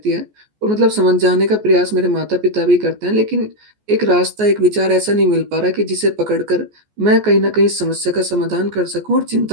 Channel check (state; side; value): late; left; 14 ms